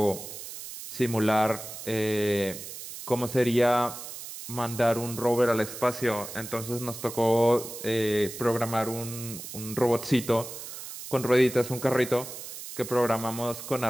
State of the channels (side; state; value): right; noise; hiss, 11 dB below the sound